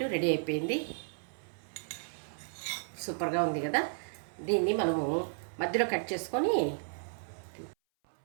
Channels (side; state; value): left; silent; 56 dB below the other